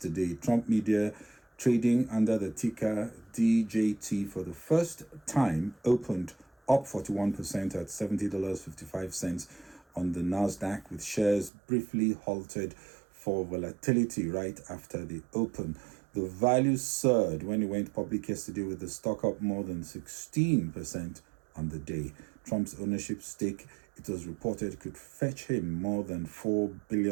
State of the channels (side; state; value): left; drops out; at 11.5 s